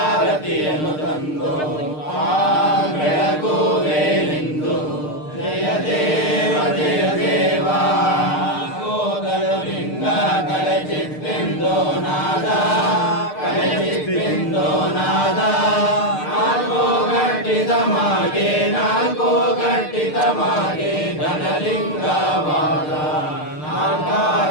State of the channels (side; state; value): right; late; 6.6 ms